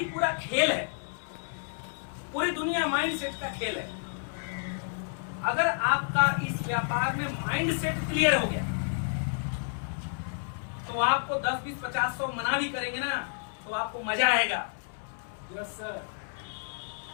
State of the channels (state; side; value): silent; right; 58 dB below the other